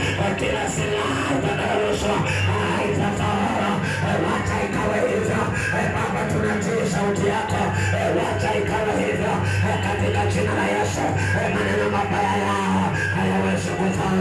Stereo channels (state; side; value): identical; both; correlation 1.00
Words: kila silaha utakayorushwa haitafaulu, wacha ikawe hivyo. Baba, tunatii sauti yako, wacha ikawe hivyo katika jina la Yesu. Maneno mabaya yao hayawezi